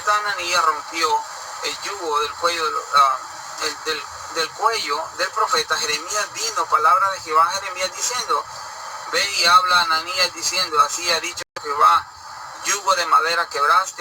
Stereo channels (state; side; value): identical; both; correlation 1.00